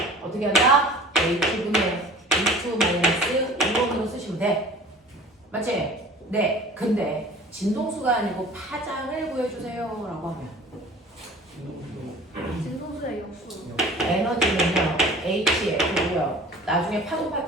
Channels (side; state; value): both; normal; correlation 0.44